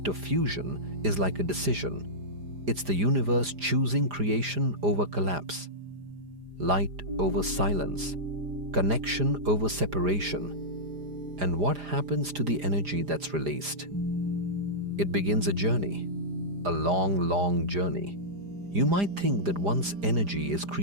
of fusion is like a decision. It's the universe choosing creation over collapse, light over silence, connection over separation. And what happens to the energy that's released? It begins a journey, a long, long journey. You might think that once energy is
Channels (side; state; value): left; late; 4.9 ms